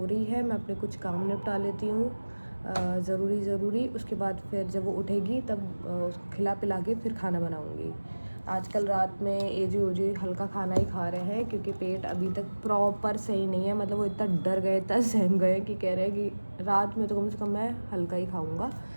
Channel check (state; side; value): inverted; both; correlation -1.00